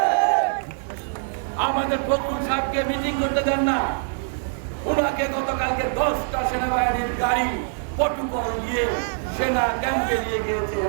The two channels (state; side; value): silent; left; digital silence